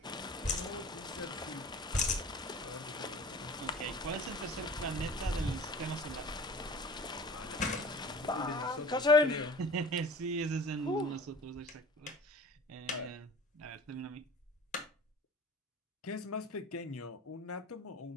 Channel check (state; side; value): normal; both; correlation 0.41